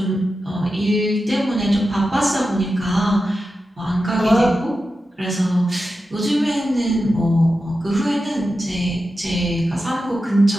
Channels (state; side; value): normal; both; correlation 0.91